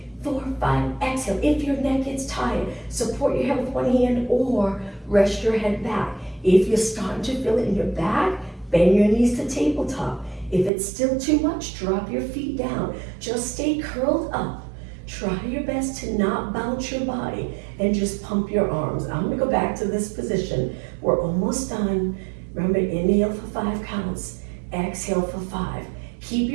4, 5. Exhale. If your neck gets tired, support your head with one hand or rest your head back. If you're starting to feel it in your back, bend your knees to tabletop. If it's still too much, drop your feet down. Just stay curled up. Try your best to not bounce your body and just pump your arms. I'm gonna go back to this position. We're almost done. Remember, inhale for 5 counts. Exhale for 5. Keep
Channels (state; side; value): drops out; left; at 10.7 s